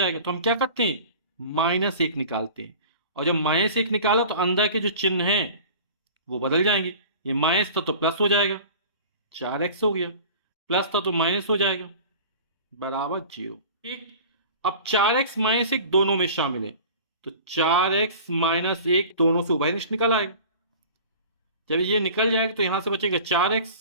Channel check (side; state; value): both; inverted; correlation -0.41